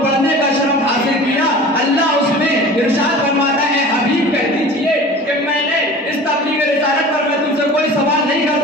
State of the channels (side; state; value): both; normal; correlation 0.39